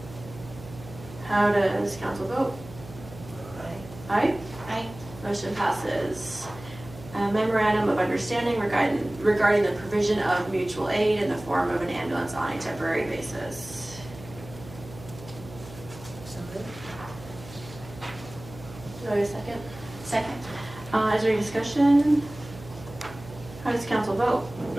How does council vote? Aye. Aye. Motion passes. A memorandum of understanding regarding the provision of mutual aid in the form of an ambulance on a temporary basis. So moved. Do I have a second? Second. Is there any discussion? How does council vote?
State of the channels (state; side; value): noise; right; hum, 16 dB below the sound